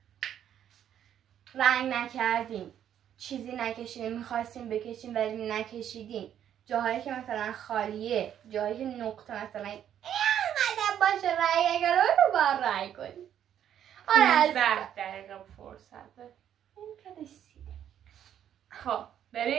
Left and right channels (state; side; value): quieter; left; 10.0 dB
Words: رنگ نکردیم چیزی نکشیدیم میخواستیم بکشیم ولی نکشیدیم، جاهایی که مثلا خالیه، جاهایی که نقطه مثلا اینقدر باشه رنگ نکرده رو باید رنگ کنیم. 15 دقیقه فرصت داریم. این که رسیده خب